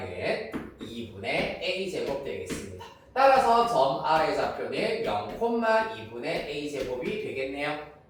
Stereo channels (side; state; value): both; identical; correlation 1.00